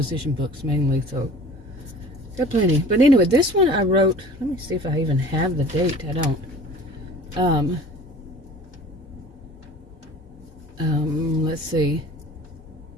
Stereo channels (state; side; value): normal; both; correlation 0.44